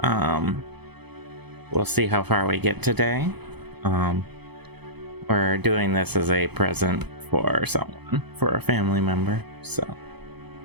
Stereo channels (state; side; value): late; left; 0.98 ms